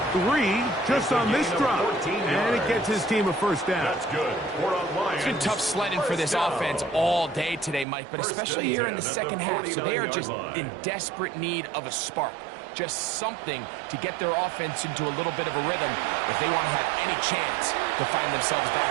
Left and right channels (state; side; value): drops out; left; at 7.9 s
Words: 3 just on this drop. And it gets his team a first down. That's good. It's been tough sledding for this offense all day today, Mike, but especially here in the second half. So they are just in desperate need of a spark. Just something to get their offense into a little bit of a rhythm if they want to have any chance to find themselves